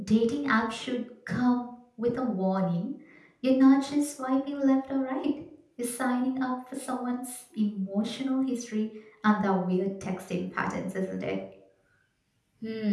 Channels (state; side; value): identical; both; correlation 1.00